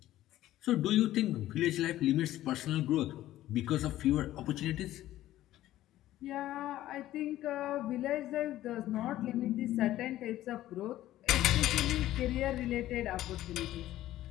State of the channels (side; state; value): right; quieter; 14.3 dB